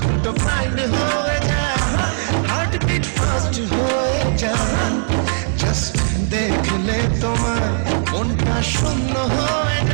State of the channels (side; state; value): left; silent; 58 dB below the other